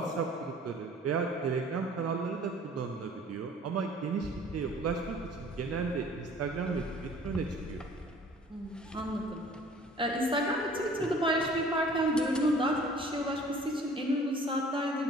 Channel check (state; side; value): normal; both; correlation 0.51